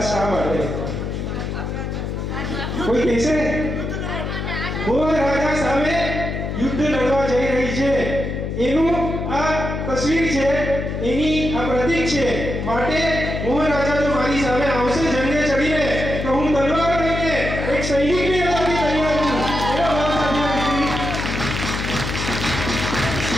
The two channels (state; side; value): noise; left; hum, 4 dB below the sound